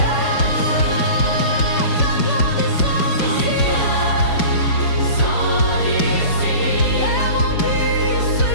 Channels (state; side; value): late; right; 5.2 ms